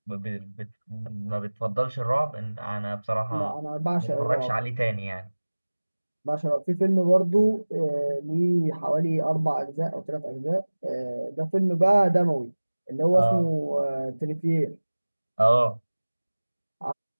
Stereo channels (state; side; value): inverted; both; correlation -1.00